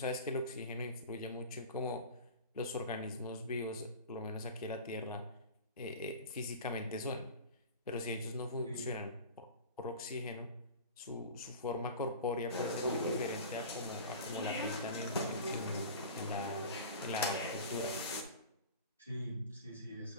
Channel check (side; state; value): both; inverted; correlation -0.36